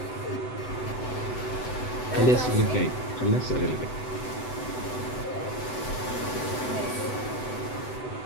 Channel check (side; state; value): right; late; 7.9 ms